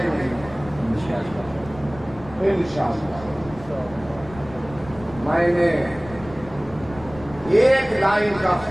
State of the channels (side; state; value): left; noise; rumble, 17 dB below the sound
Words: نہیں انشاءاللہ. میں نے ایک لائن کا